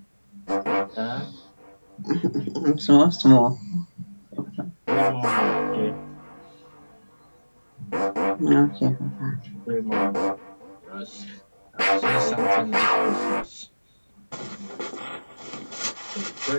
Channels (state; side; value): inverted; both; correlation -1.00